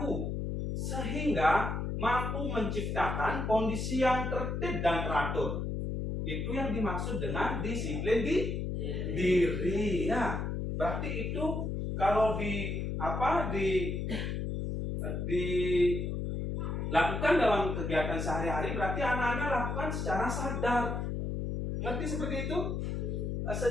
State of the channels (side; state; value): left; noise; hum, 2 dB below the sound